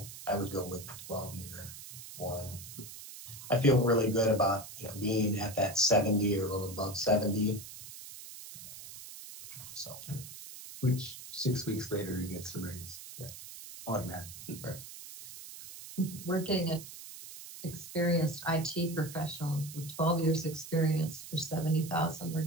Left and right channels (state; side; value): noise; right; hiss, 13 dB below the sound